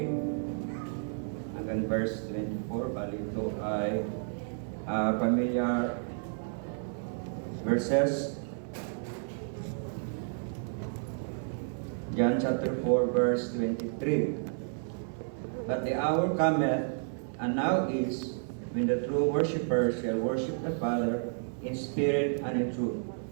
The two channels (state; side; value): silent; left; 57 dB below the other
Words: hanggang verse 24. Bali ito ay familiar verses. John chapter 4 verse 23. But the hour cometh, and now is, when the true worshippers shall worship the Father in spirit and in truth.